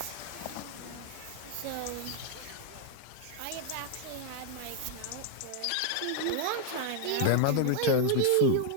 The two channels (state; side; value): different; both; correlation 0.00